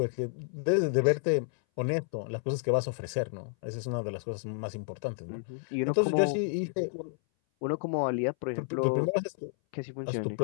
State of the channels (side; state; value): right; silent; 57 dB below the other